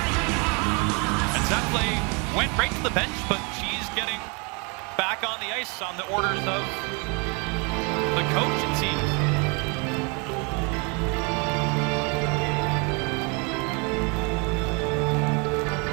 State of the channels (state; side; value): quieter; left; 32.4 dB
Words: And Zappley went right to the bench, but she's getting back on the ice on the orders of the coach, it seems.